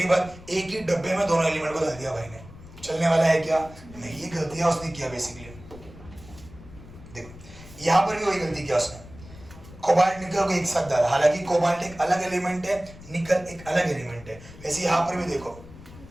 बात, एक ही डब्बे में दोनों एलिमेंट को डाल दिया भाई ने, चलने वाला है क्या? नहीं, ये गलतियां उसने किया बेसिकली। देखो यहाँ पर भी वही गलती किया उसने, कोबाल्ट निकल को एक साथ डाला, हालांकि कोबाल्ट एक अलग एलिमेंट है, निकल एक अलग एलिमेंट है। वैसे यहाँ पर भी देखो,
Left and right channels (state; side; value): noise; left; rumble, 18 dB below the sound